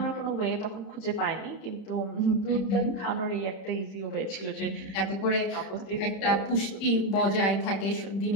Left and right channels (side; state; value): right; late; 31 ms